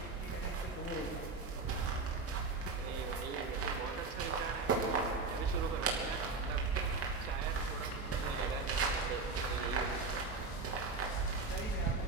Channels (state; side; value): quieter; left; 4.0 dB